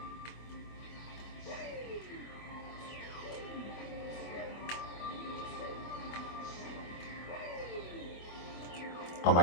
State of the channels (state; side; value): late; right; 24 ms